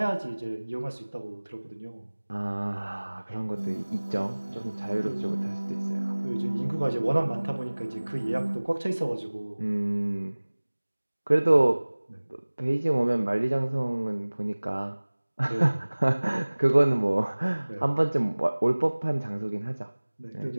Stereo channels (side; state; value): both; inverted; correlation -1.00